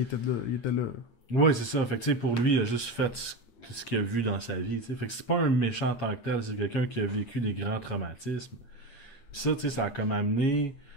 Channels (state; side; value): late; right; 8.6 ms